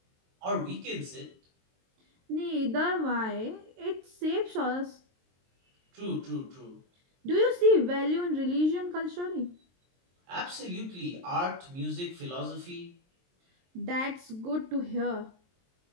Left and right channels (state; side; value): late; left; 23 ms